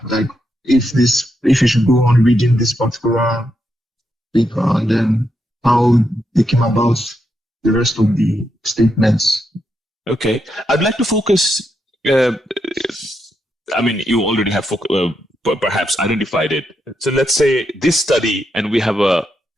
like if you should go on reading this particular paper, and then how they came about the rest of the statements. Okay, I'd like to focus. I mean, you already have perhaps identified it. So let's say this study, and we have a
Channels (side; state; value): both; normal; correlation 0.82